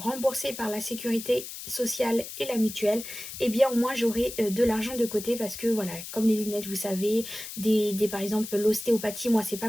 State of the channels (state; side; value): noise; left; hiss, 10 dB below the sound